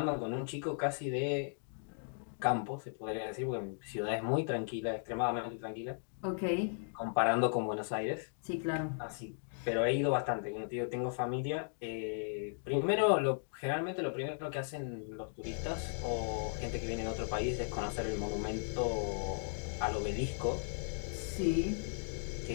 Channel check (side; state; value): right; silent; digital silence